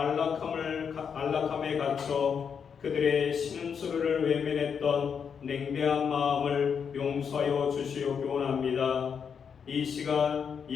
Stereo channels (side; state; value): right; quieter; 6.8 dB